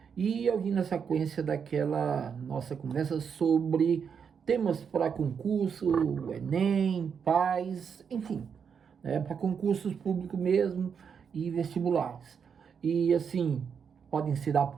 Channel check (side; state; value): left; quieter; 6.8 dB